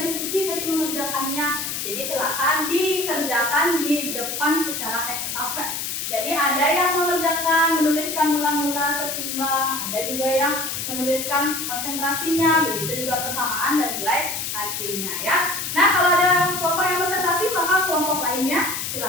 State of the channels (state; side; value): noise; left; hiss, 4 dB below the sound